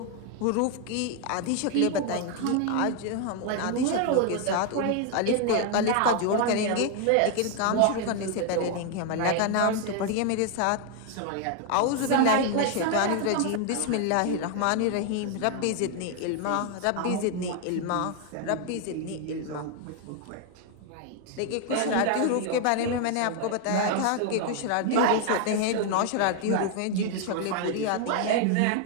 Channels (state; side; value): different; both; correlation 0.01